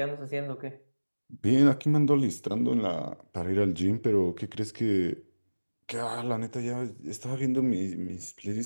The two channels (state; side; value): inverted; both; correlation -1.00